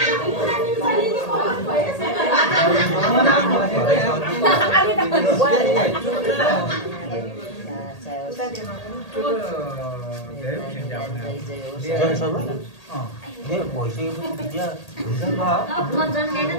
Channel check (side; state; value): right; late; 1.8 ms